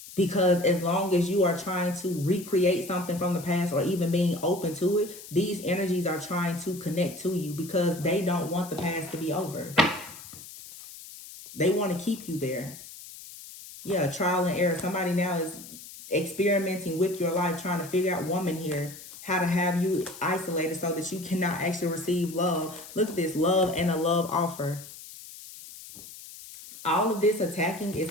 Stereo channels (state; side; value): noise; left; hiss, 15 dB below the sound